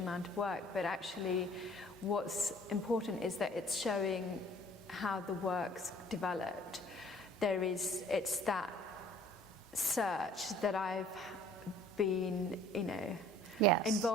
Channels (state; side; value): normal; both; correlation 0.54